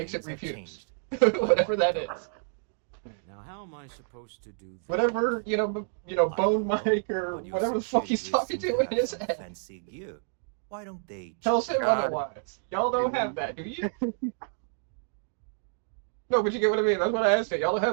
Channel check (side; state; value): left; silent; digital silence